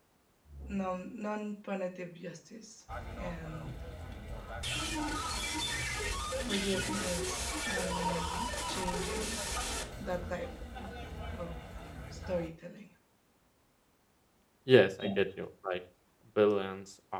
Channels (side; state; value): both; identical; correlation 1.00